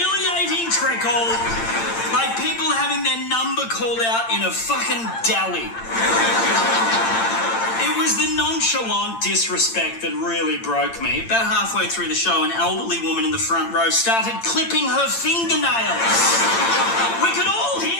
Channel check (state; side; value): late; right; 8.8 ms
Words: trickle, like people having their number called out in a fucking deli. It was the nonchalant disrespect that really broke me. About halfway through the show, an elderly woman in the front row started clipping her fingernails. We could all